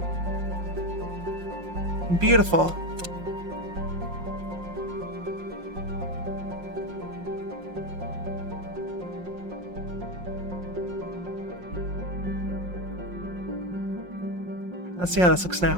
Beautiful. Let's see how this looks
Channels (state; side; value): late; left; 5.6 ms